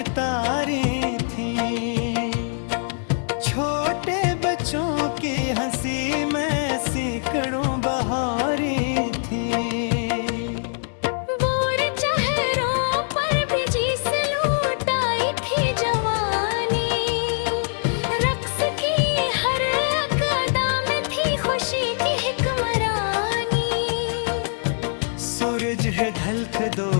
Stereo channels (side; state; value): right; silent; digital silence